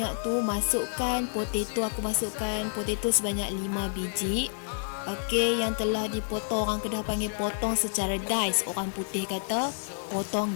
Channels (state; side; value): silent; right; digital silence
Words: tu, masukkan potato. Aku masukkan potato sebanyak 5 biji. Okey, yang telah dipotong, orang Kedah panggil potong secara dice, orang putih kata